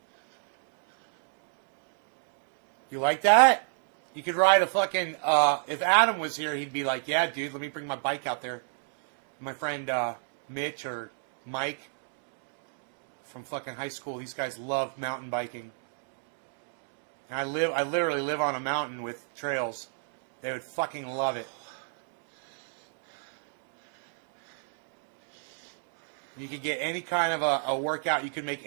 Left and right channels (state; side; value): silent; left; digital silence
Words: You like that? You could ride a fucking, if Adam was here, he'd be like, yeah, dude, let me bring my bike out there. My friend Mitch or Mike from fucking high school, these guys love mountain biking. And I literally live on a mountain with trails. They would fucking love it. You could get any kind of a workout. You can make